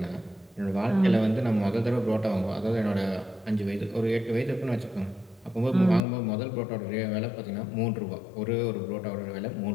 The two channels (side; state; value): right; drops out; at 6.0 s